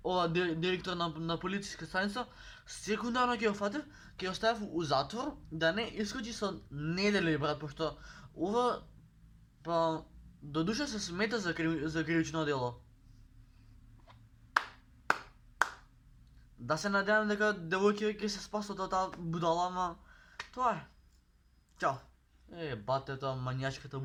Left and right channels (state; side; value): identical; both; correlation 1.00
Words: ова директор на полициска станица, секундарно ќе го фатев, ќе го ставев у затвор, да не искочи со недели, брат, пошто ова, па, до душа се смета за кривично дело. Да се надевам дека девојките ќе се спасат од таа будала, ама тоа е. Чао. Батето, манијачката